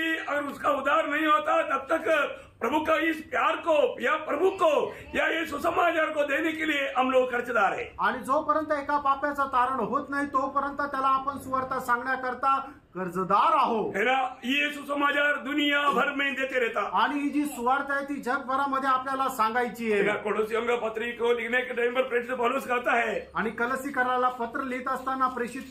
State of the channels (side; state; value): both; identical; correlation 1.00